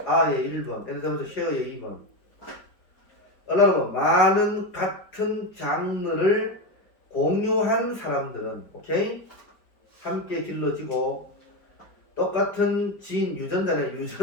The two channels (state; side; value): late; right; 4.7 ms